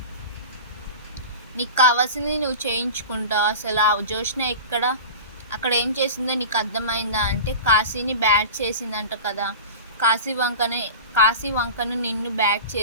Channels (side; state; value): both; inverted; correlation -0.32